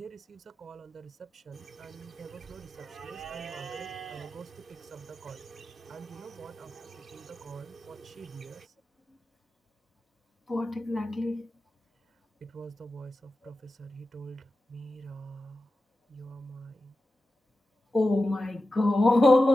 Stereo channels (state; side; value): normal; both; correlation 0.93